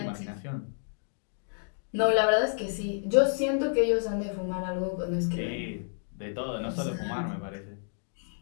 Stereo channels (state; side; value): silent; right; digital silence